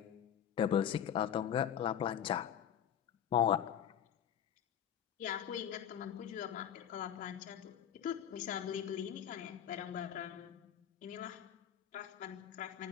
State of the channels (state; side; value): quieter; right; 9.5 dB